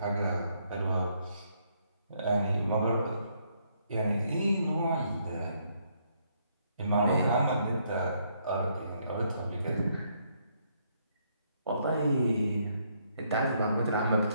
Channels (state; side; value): inverted; both; correlation -0.72